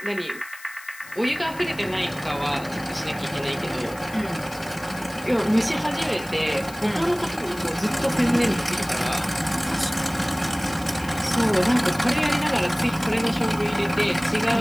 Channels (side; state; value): left; noise; hiss, 19 dB below the sound